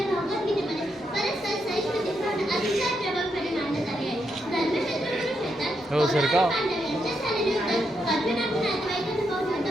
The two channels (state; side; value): normal; both; correlation 0.81